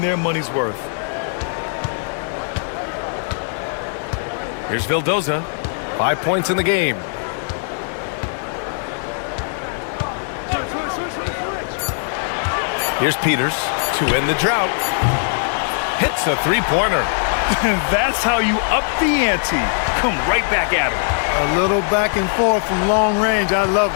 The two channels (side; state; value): right; silent; digital silence